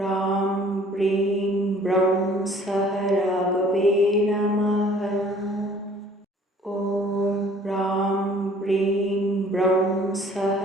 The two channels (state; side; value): normal; both; correlation 0.54